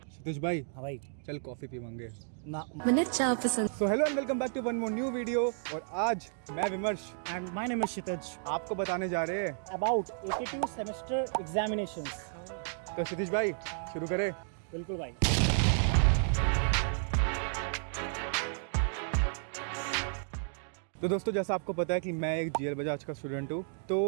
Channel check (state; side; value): silent; left; digital silence